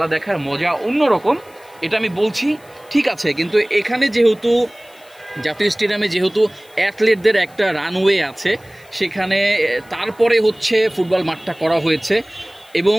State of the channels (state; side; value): noise; left; hiss, 28 dB below the sound